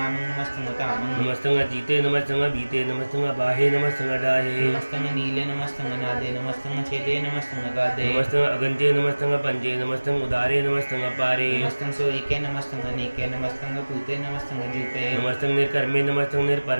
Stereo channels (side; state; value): both; inverted; correlation -1.00